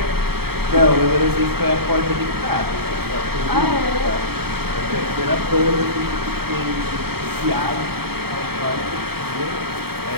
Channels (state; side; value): late; left; 0.95 ms